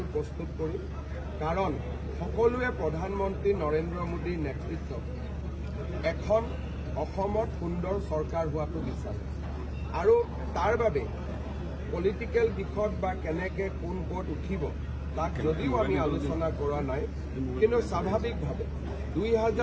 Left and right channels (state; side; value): identical; both; correlation 1.00